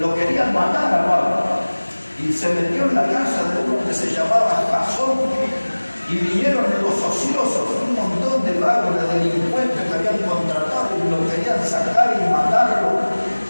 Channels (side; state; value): both; inverted; correlation -1.00